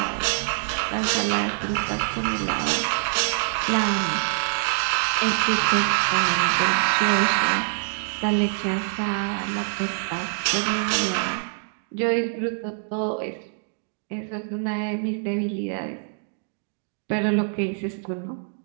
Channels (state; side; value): silent; left; digital silence